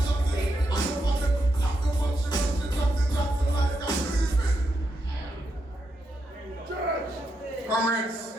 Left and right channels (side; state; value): both; normal; correlation 0.82